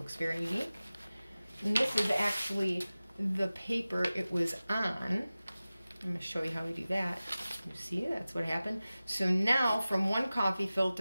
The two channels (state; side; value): inverted; both; correlation -0.97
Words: very unique. And this is actually the paper it was on. I'm going to show you how we do that. You see, that's what happened. So now from one coffee